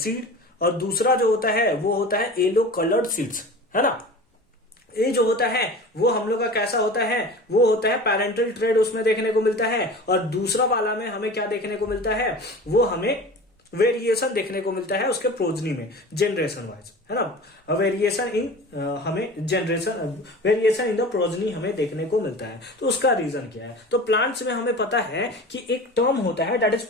और दूसरा जो होता है वो होता है येलो कलर्ड सीड्स, है ना। ये जो होता है वो हम लोग का कैसा होता है, वो होता है पेरेंटल ट्रेड उसमें देखने को मिलता है, और दूसरा वाला में हमें क्या देखने को मिलता है, वो हमें वेरिएशन देखने को मिलता है उसके प्रोजनी में, जनरेशन वाइज, है ना। वेरिएशन इन द प्रोजनी हमें देखने को मिलता है। तो उसका रीजन क्या है? तो प्लांट्स में हमें पता है कि एक टर्म होता है दैट इज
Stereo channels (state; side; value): normal; both; correlation 0.36